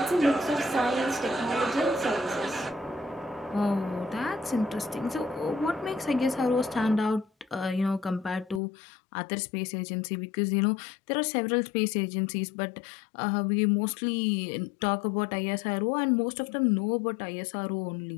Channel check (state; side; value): drops out; right; at 8.6 s